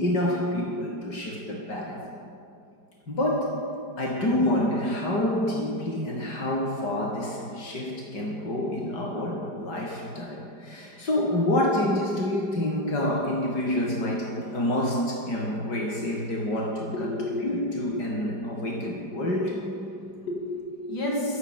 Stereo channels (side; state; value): right; late; 5.0 ms